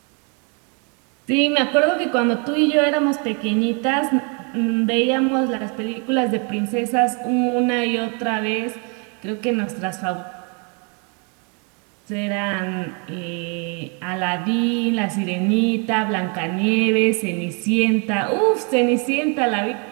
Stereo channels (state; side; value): quieter; left; 35.9 dB